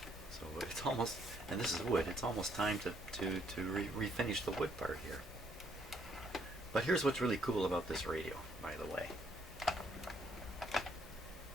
So it's almost, and this is wood, it's almost time to refinish the wood part here. But here's what's really cool about this radio, by the way.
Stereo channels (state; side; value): normal; both; correlation 0.69